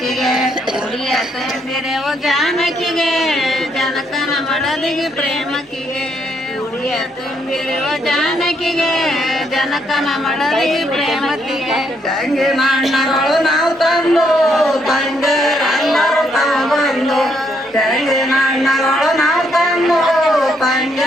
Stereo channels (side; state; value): both; normal; correlation 0.74